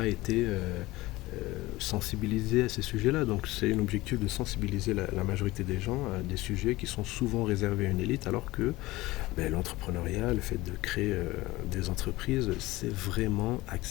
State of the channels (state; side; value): quieter; right; 19.3 dB